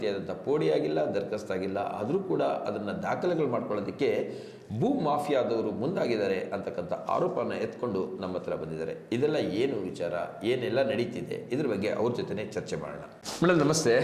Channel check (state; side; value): identical; both; correlation 1.00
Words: ಪೋಡಿಯಾಗಿಲ್ಲ, ದರ್ಖಾಸ್ತಾಗಿಲ್ಲ, ಆದರೂ ಕೂಡ ಅದನ್ನು ದಾಖಲೆಗಳು ಮಾಡ್ಕೊಳ್ಳೋದಕ್ಕೆ ಭೂ ಮಾಫಿಯಾದವರು ಮುಂದಾಗಿದ್ದಾರೆ ಅಂತಕ್ಕಂಥ ಆರೋಪನ ಎತ್ಕೊಂಡು ನಮ್ಮ ಹತ್ರ ಬಂದಿದ್ದಾರೆ. ಇದೆಲ್ಲ ಏನು ವಿಚಾರ, ಏನೆಲ್ಲ ನಡೀತಿದೆ, ಇದ್ರ ಬಗ್ಗೆ ಅವ್ರ ಜೊತೆನೇ ಚರ್ಚೆ ಮಾಡೋಣ. ಮೇಡಮ್ ನಮಸ್ತೆ.